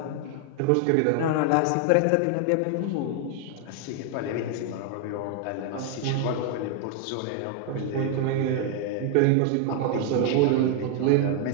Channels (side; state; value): both; different; correlation 0.00